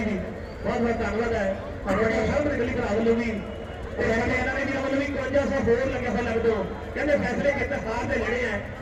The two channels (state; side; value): identical; both; correlation 1.00